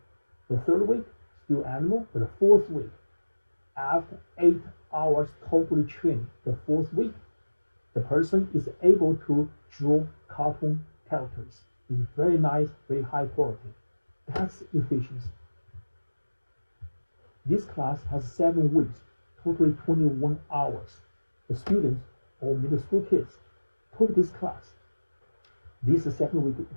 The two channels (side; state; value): both; inverted; correlation -1.00